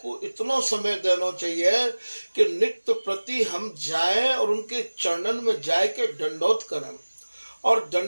इतना समय देना चाहिए कि नित्य प्रति हम जाएं और उनके चरणन में जाए के दंडोत करें, और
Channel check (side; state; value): both; inverted; correlation -1.00